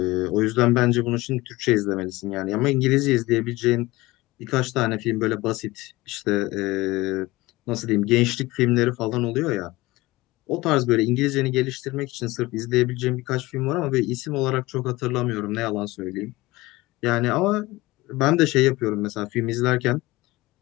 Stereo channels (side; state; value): right; quieter; 20.3 dB